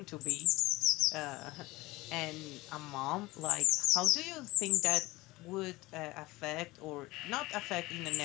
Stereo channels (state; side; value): quieter; right; 20.2 dB